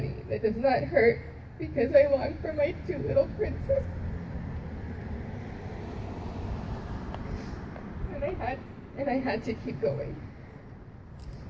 that does not hurt because I long for my two little princes. And I had to keep going.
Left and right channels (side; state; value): both; identical; correlation 1.00